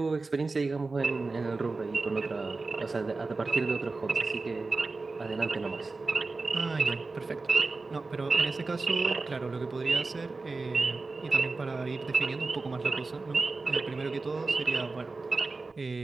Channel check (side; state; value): left; quieter; 3.7 dB